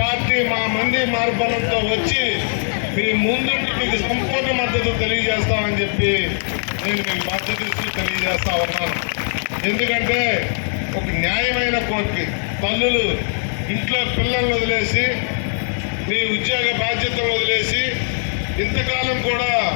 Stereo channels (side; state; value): right; silent; 65 dB below the other